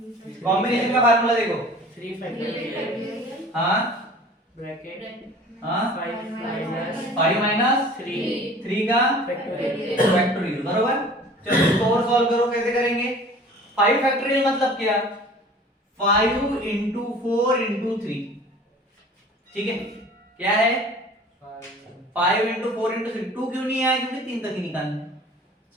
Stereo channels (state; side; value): normal; both; correlation 0.45